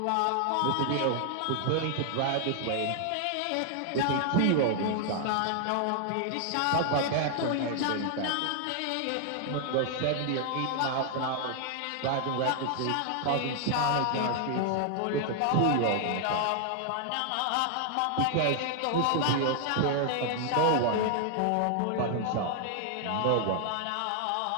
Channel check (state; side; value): different; both; correlation 0.00